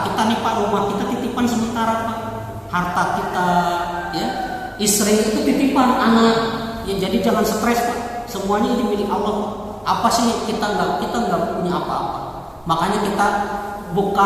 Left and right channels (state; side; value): identical; both; correlation 1.00